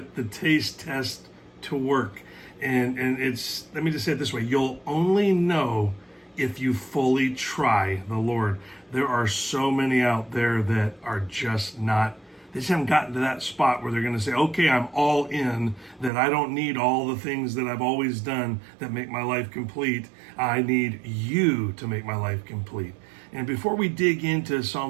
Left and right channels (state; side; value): drops out; left; at 16.1 s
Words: the taste test to work. And it's, let me just say it this way, you'll only know if you fully try the Lord. There are so many out there that are just not, they just haven't gotten to that spot where they're going to say, okay, I'm all in, that I don't need all the things that I've always done that make my life complete. I need you to make my life complete. And before we dig into